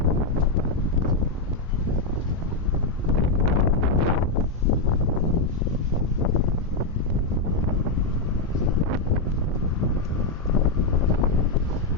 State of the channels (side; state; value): right; quieter; 3.3 dB